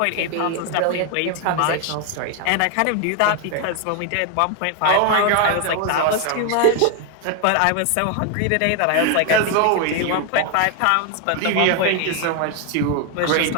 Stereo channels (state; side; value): different; both; correlation 0.01